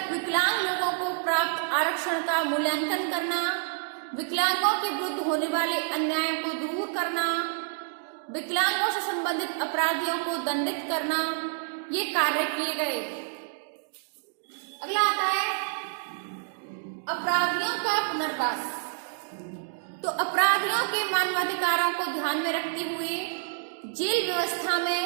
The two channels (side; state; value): left; silent; digital silence